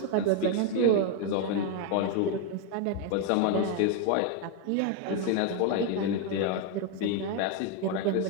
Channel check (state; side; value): different; both; correlation 0.01